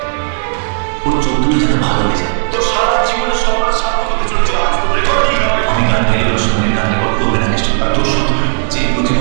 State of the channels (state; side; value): silent; left; digital silence